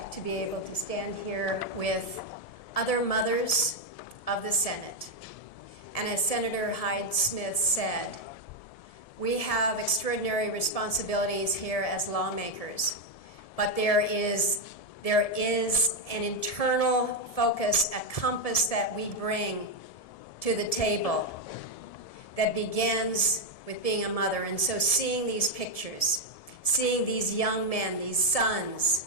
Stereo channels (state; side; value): late; right; 1.7 ms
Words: to be able to stand here with other mothers of the Senate. And as Senator Hyde-Smith said, we have extraordinary responsibilities here as lawmakers, but there is There is an internal focus, a compass that we bring to the table that begins with being a mother. And so seeing these pictures, seeing these young men, these sons,